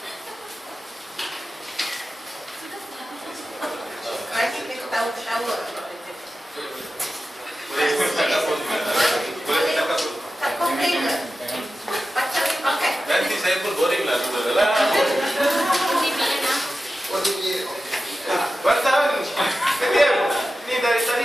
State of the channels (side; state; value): both; normal; correlation 0.93